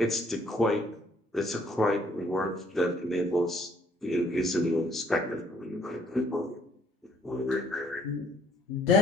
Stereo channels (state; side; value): normal; both; correlation 0.64